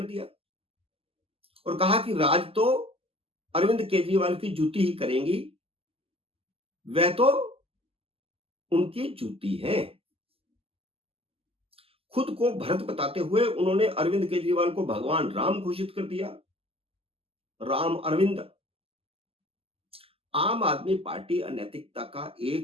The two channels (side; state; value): left; late; 0.28 ms